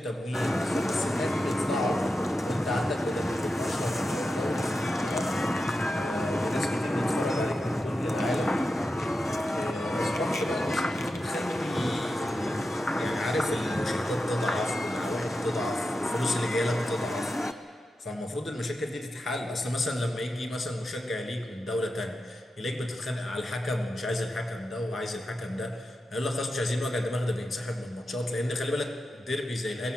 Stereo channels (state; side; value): normal; both; correlation 0.90